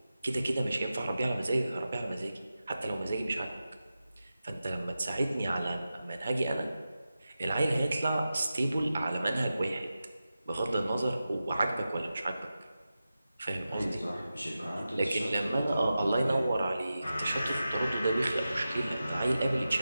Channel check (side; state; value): both; inverted; correlation -0.93